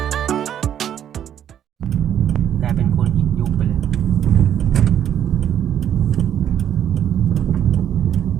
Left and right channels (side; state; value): left; quieter; 10.0 dB